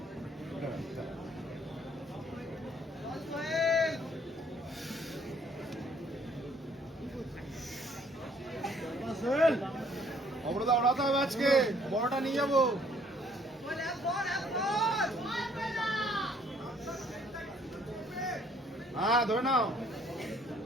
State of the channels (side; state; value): both; normal; correlation 0.63